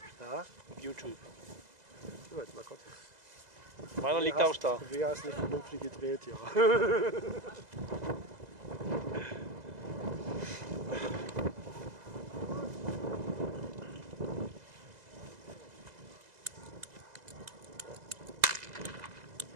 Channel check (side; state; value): left; late; 2.0 ms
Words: Ja. YouTube. So, jetzt mal kurz. Meiner liegt auch da. Wer ist nicht vernünftig gedreht, ja.